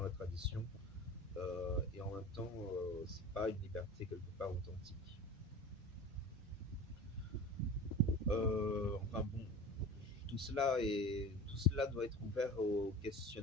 la tradition, et en même temps, c'est pas une liberté quelque part authentique. Enfin bon, tout cela doit être ouvert au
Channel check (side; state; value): both; normal; correlation 0.36